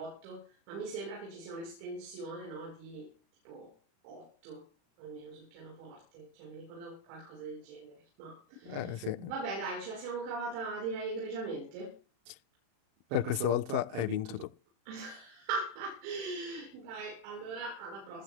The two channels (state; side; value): late; left; 36 ms